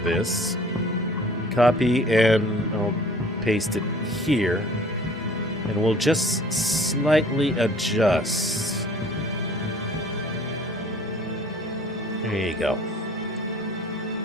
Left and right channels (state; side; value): normal; both; correlation 0.50